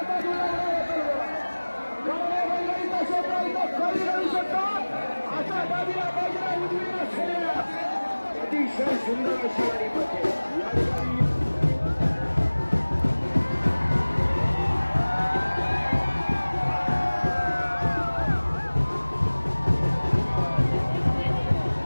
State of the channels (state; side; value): inverted; both; correlation -1.00